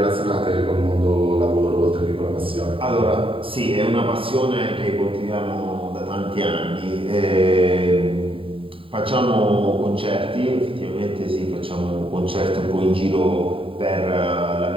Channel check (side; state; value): left; late; 0.26 ms